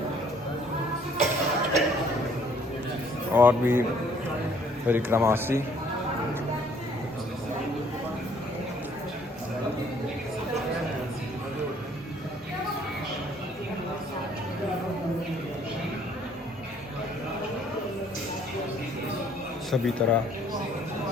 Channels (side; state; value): both; normal; correlation 0.61